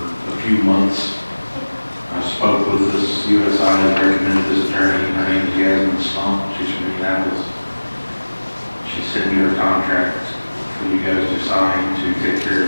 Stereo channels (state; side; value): inverted; both; correlation -1.00